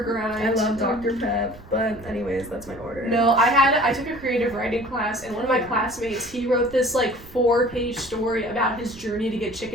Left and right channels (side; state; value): right; noise; rumble, 20 dB below the sound